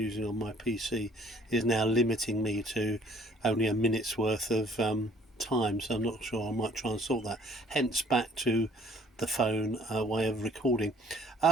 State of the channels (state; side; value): normal; both; correlation 0.59